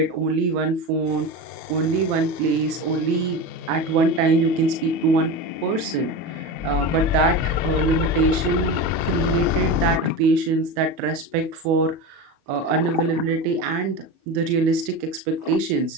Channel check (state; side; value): late; left; 37 ms